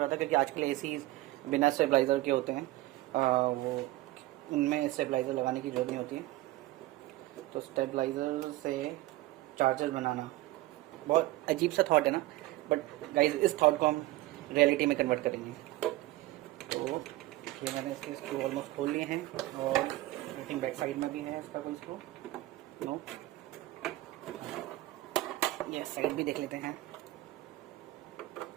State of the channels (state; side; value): quieter; left; 17.6 dB